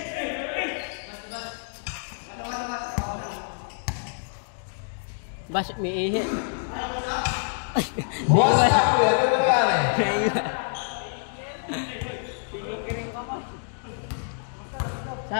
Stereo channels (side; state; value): right; silent; digital silence